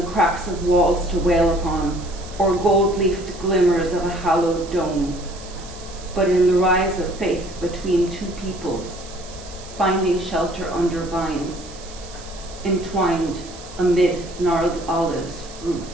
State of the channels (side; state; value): right; noise; hiss, 17 dB below the sound